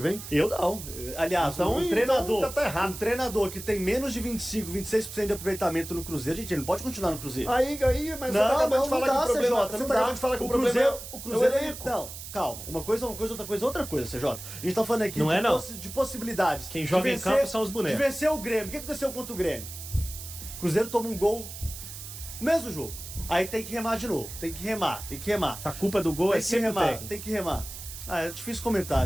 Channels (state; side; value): noise; right; hiss, 11 dB below the sound